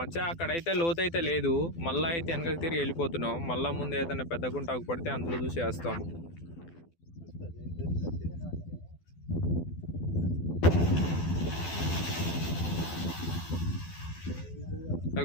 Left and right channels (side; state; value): right; late; 12 ms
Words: అక్కడైతే లోతు అయితే లేదు. మళ్ళీ అయితే వెనకకి తిరిగి వెళ్ళిపోతున్నాం. మళ్ళీ ముందు ఏదైనా పెద్ద గుంట ఆగుపడితే అందులో చూసి వేస్తాం.